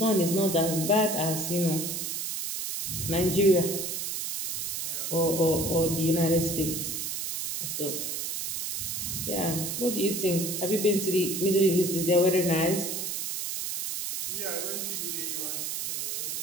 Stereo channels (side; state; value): right; noise; hiss, 3 dB below the sound